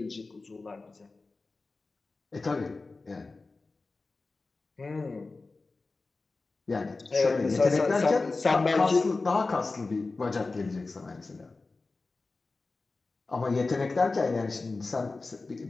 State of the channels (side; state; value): right; quieter; 3.7 dB